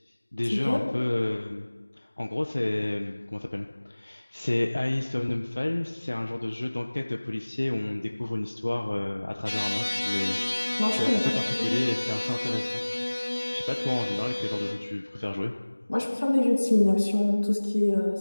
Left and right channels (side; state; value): both; inverted; correlation -1.00